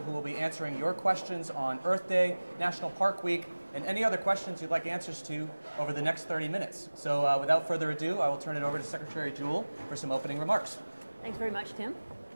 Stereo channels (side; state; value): both; inverted; correlation -1.00